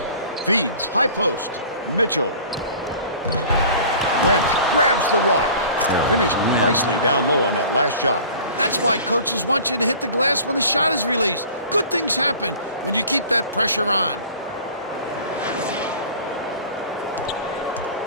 Feeds high post. Mitchell went, grabs the rock. Finished nicely down low on that last shot. That's why coaches want you to hit the glass when the shot is released. Good things happen when you keep that pressure on.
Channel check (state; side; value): inverted; both; correlation -0.45